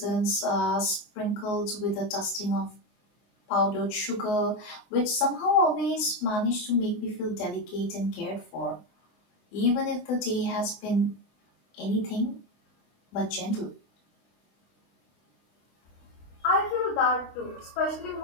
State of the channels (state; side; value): late; right; 24 ms